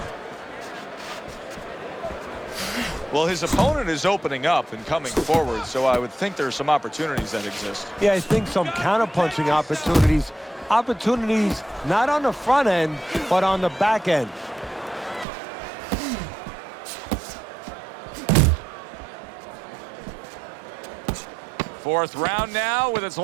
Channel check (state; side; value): drops out; left; at 15.2 s